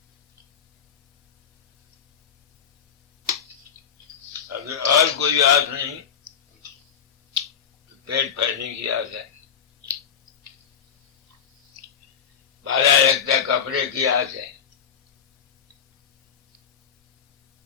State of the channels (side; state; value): right; quieter; 7.7 dB